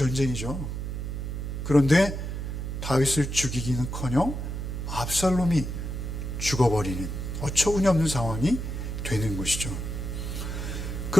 그런데 다윗을 죽이기는커녕 압살롬이 죽어버리는 어처구니없는 상황이 되는 것이죠.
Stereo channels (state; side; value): noise; right; hum, 4 dB below the sound